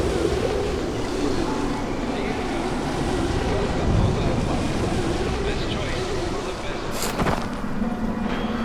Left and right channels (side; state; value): both; identical; correlation 1.00